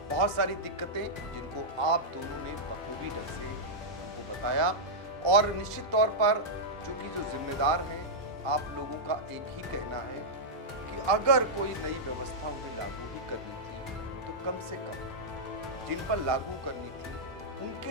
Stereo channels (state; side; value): normal; both; correlation -0.09